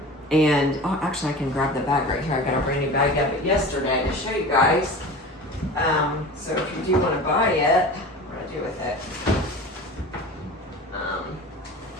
oh, actually I can grab the bag right here. I got a brand new bag out of it yesterday to show you guys. So if you do want to buy it, what do I do with it?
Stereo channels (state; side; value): normal; both; correlation 0.35